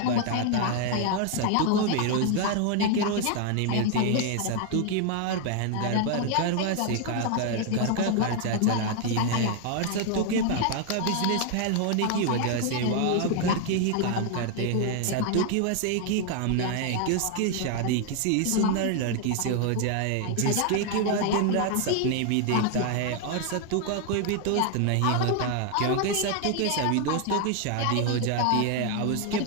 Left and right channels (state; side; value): different; both; correlation 0.00